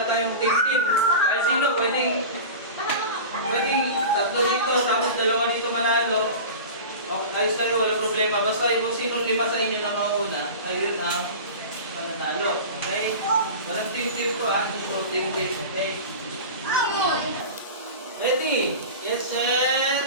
tayong team. Ay sino pwedeng tatlo dito, tapos dalawa dito manalo. Okay, ayos kayo, wala problema. Basta kung sinong lima sa inyo na mauna, ayun ang mananalo. Okay? Walang team to, no team game. Okay? Ready? Yes,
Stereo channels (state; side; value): inverted; both; correlation -0.32